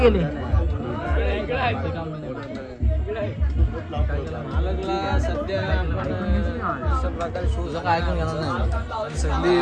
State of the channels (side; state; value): both; identical; correlation 1.00